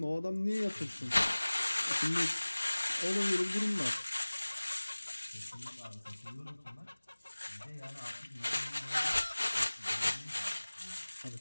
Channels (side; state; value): both; inverted; correlation -1.00